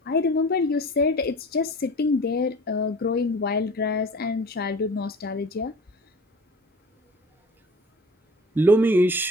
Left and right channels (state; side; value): normal; both; correlation 0.42